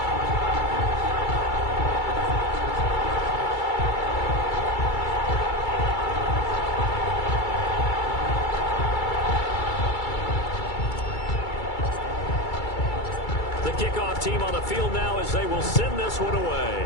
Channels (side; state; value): right; late; 2.3 ms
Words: Kickoff team on the field now as they will send this one away.